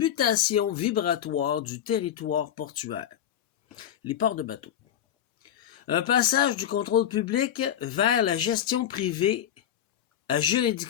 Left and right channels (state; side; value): quieter; right; 10.2 dB